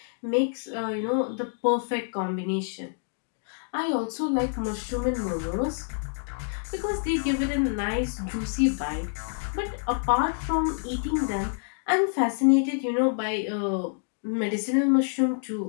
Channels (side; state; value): right; silent; digital silence